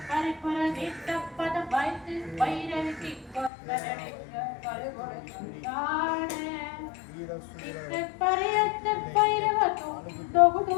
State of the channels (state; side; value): drops out; right; at 3.5 s